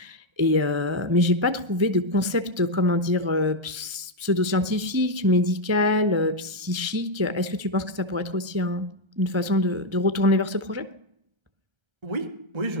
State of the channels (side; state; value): left; late; 1.3 ms